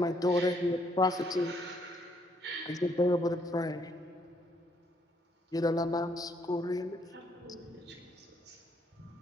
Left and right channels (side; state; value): both; normal; correlation 0.70